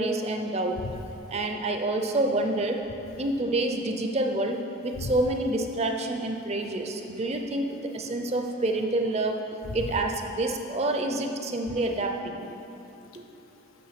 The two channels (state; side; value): normal; both; correlation 0.37